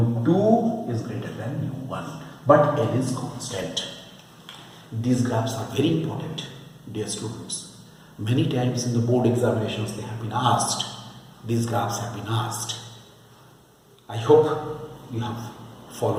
is greater than nu1, but L is constant. These graphs are very important, dear students. Many times in the board examinations they have been asked, these graphs have been asked. I hope you have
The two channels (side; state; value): both; identical; correlation 1.00